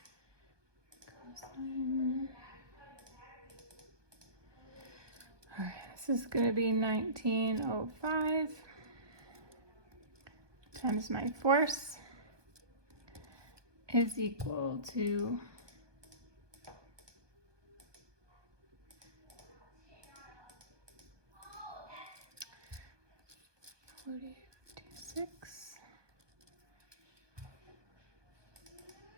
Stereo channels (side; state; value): left; late; 1.2 ms